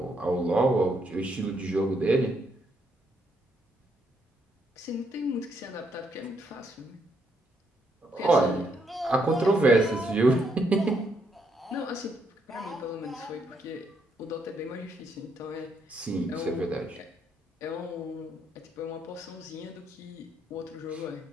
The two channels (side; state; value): both; normal; correlation 0.75